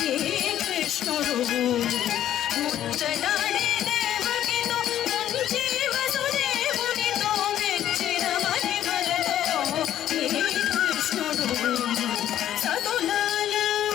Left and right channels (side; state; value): right; quieter; 11.5 dB